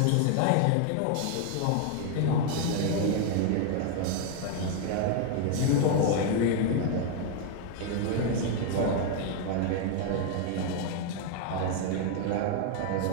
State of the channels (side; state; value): both; different; correlation 0.00